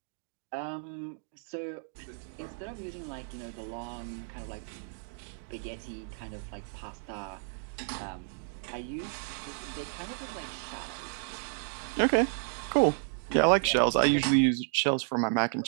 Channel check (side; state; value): left; silent; digital silence